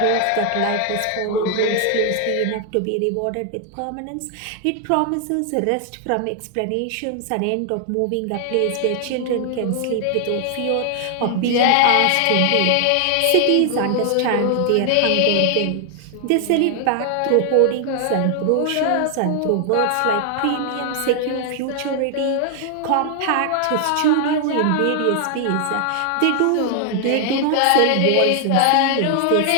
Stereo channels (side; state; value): both; different; correlation 0.00